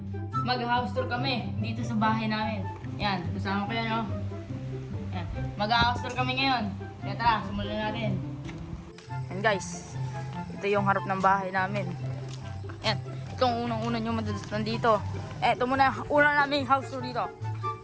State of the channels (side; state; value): both; identical; correlation 1.00